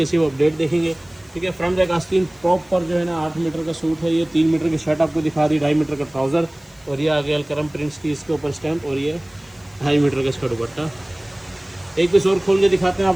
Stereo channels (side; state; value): left; noise; hiss, 29 dB below the sound